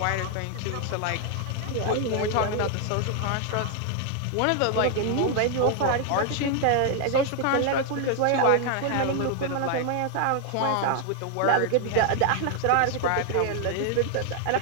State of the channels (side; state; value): both; different; correlation 0.00